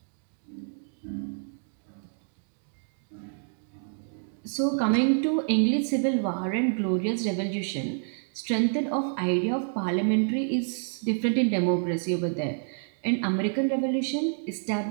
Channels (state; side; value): silent; left; digital silence